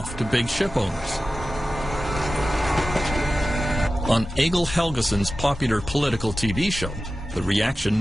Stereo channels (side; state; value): both; normal; correlation 0.94